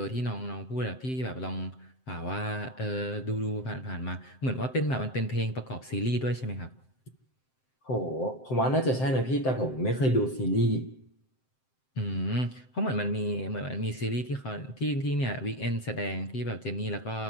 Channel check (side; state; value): right; late; 7.7 ms